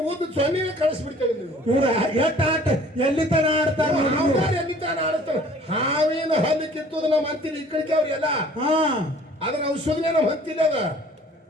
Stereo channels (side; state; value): both; normal; correlation 0.52